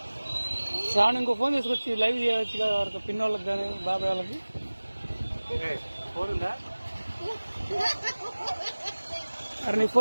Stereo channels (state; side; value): inverted; both; correlation -1.00